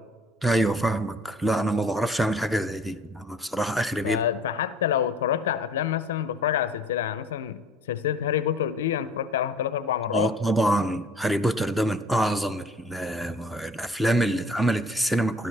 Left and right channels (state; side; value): normal; both; correlation 0.50